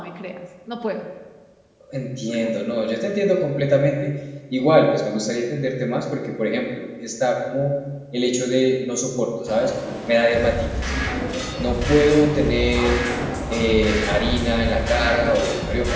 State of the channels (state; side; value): identical; both; correlation 1.00